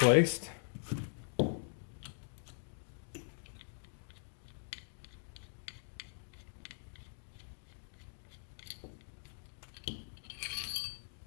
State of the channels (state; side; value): silent; right; digital silence